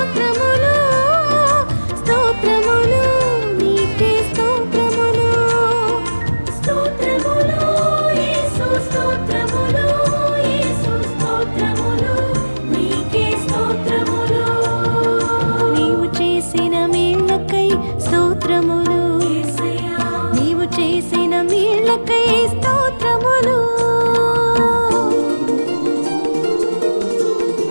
స్తోత్రములు నీకే స్తోత్రములు, స్తోత్రములు యేసు, స్తోత్రములు యేసు, స్తోత్రములు నీకే స్తోత్రములు. నీవు చేసిన మేళ్ళకై స్తోత్రములు, నీవు చేసిన మేళ్ళకై స్తోత్రములు.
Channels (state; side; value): inverted; both; correlation -1.00